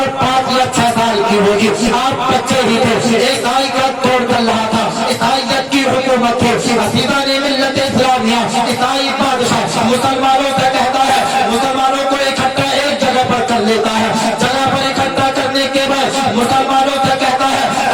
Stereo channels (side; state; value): both; identical; correlation 1.00